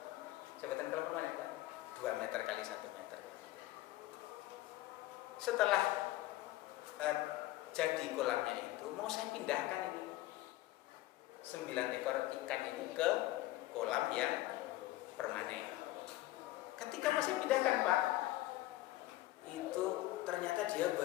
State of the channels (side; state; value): right; quieter; 16.7 dB